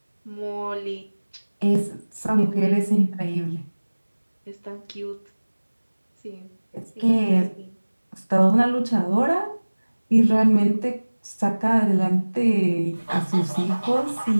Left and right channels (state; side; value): inverted; both; correlation -1.00